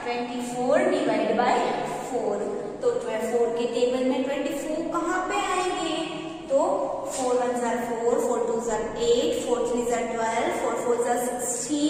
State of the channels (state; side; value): identical; both; correlation 1.00